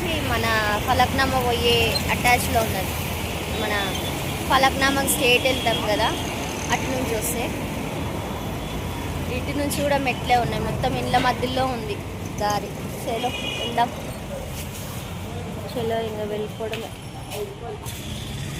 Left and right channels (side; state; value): both; identical; correlation 1.00